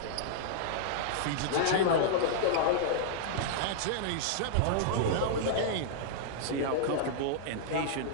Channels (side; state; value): both; different; correlation -0.01